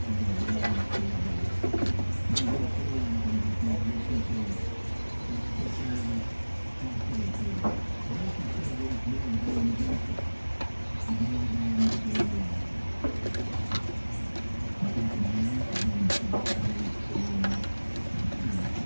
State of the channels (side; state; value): both; inverted; correlation -1.00